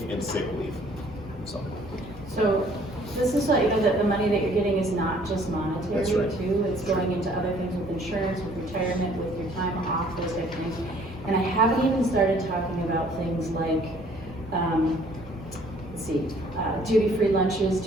and sick leave. So this is what, you know, that the money that you're getting is not just monetary That's right. too, it's going into other things with insurance, with retirement, with your time off, those type of things. And I haven't even started talking about things like, duty-free lunches,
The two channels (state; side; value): normal; both; correlation 0.58